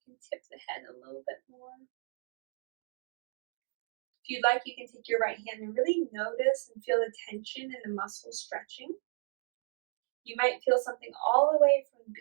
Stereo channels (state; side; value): silent; left; digital silence